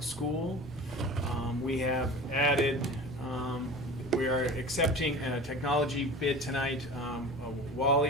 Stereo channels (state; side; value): normal; both; correlation 0.36